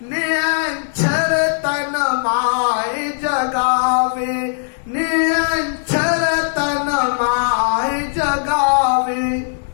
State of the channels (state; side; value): silent; right; digital silence